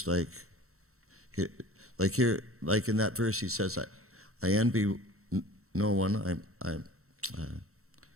like in that verse he says, I envy no one,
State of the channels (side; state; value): left; late; 0.63 ms